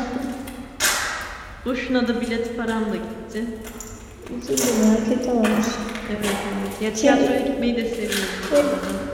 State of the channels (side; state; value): both; identical; correlation 1.00